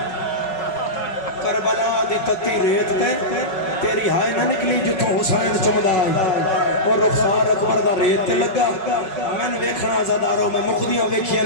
کربلا دی تتی ریت تے تیری ہائے نہ نکلی جتوں حسین چمدا آئی اور رخسار اکبر دا ریت تے لگا میں نے ویکھنا زداروں میں مقدیاں ویکھیاں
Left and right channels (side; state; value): right; late; 5.4 ms